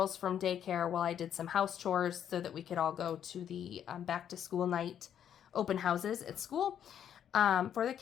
from daycare while I did some house chores so that we could all go to the back to school night open houses at school for the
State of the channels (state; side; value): quieter; right; 9.4 dB